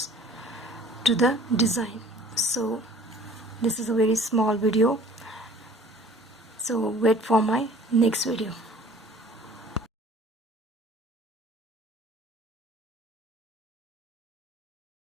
to the design. So this is a very small video, so wait for my next video.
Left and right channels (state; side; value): normal; both; correlation 0.50